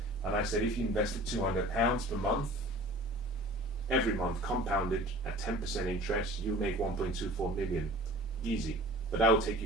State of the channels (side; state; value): both; normal; correlation 0.43